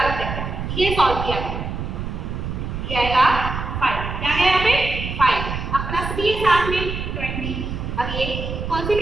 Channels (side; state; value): right; noise; rumble, 5 dB below the sound